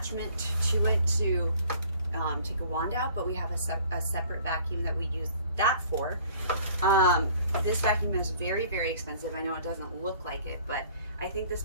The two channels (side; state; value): both; inverted; correlation -0.53